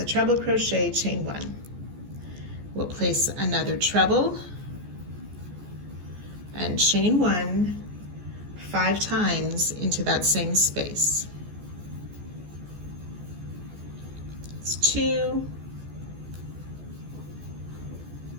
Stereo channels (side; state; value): left; late; 14 ms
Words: treble crochet, chain 1. We'll place another treble and chain 1 5 times into that same space. It's 2,